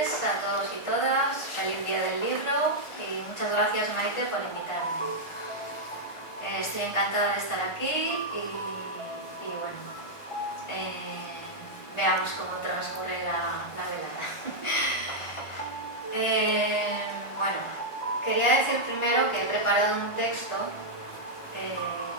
a todos y todas. Feliz día del libro y muchas gracias, Maite, por invitarme. Estoy encantada de estar aquí y bueno, veamos cómo transcurre la velada. Bueno, quería decir primero que he preparado un texto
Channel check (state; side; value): late; right; 1.3 ms